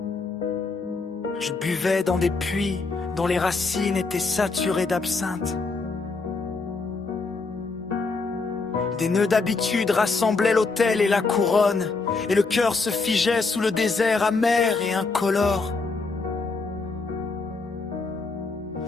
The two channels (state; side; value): quieter; right; 4.0 dB